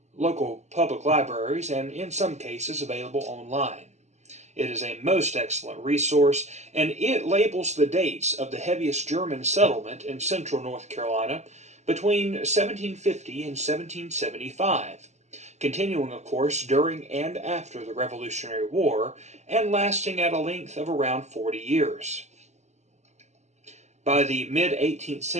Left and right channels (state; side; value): late; left; 0.33 ms